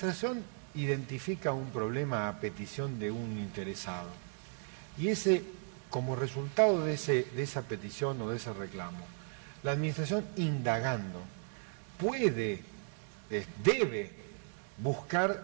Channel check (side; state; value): left; silent; 54 dB below the other